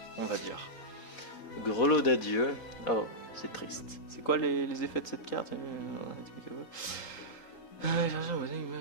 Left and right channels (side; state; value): right; late; 3.8 ms